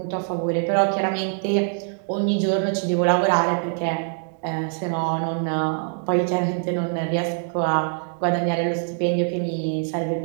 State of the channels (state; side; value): silent; left; 61 dB below the other